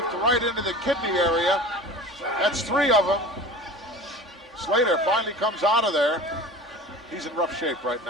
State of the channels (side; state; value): both; normal; correlation 0.37